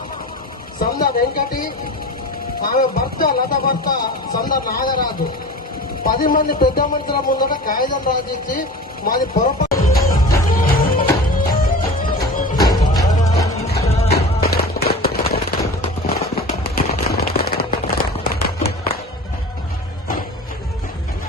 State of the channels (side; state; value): both; normal; correlation 0.35